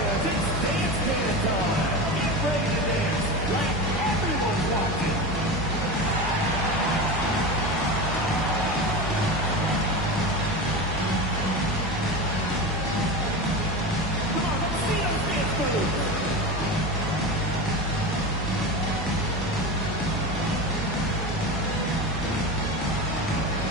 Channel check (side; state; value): both; normal; correlation 0.24